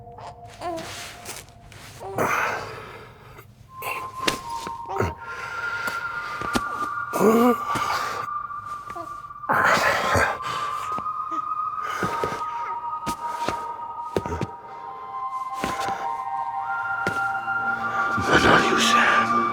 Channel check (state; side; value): identical; both; correlation 1.00